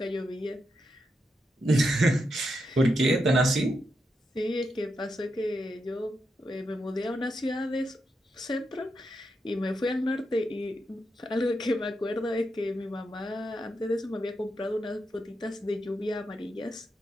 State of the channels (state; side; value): normal; both; correlation 0.85